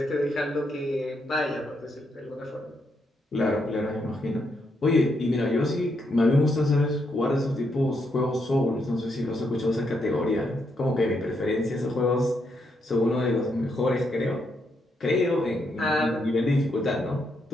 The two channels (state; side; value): normal; both; correlation 0.78